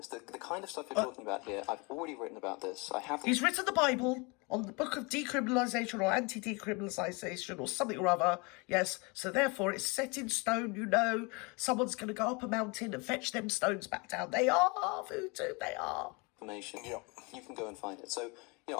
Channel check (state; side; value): quieter; right; 29.1 dB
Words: The kind of stuff you're talking about here, I've already written about this. He's written the Bible on the book of decriminalisation or anti-decriminalisation or something or other. Yes, so therefore it's set in stone, you know. Someone's going to go up a mountain and fetch them stones back down. They are voodoo, they are. Information. Yeah. You can go and find it. So,